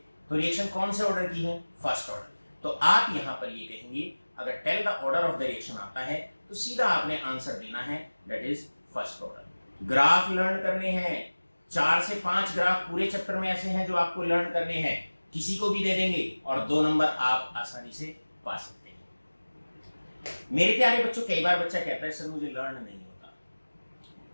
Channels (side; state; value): both; inverted; correlation -1.00